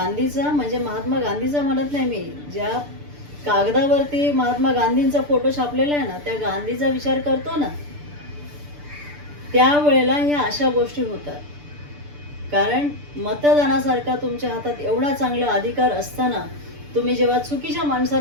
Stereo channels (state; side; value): late; left; 6.8 ms